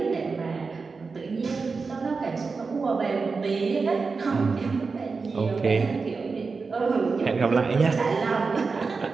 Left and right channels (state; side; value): quieter; left; 4.6 dB